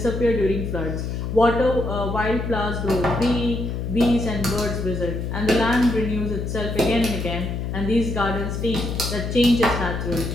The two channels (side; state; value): left; noise; hum, 3 dB below the sound